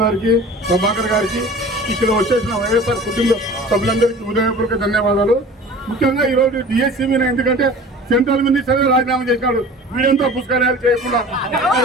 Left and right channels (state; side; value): normal; both; correlation 0.41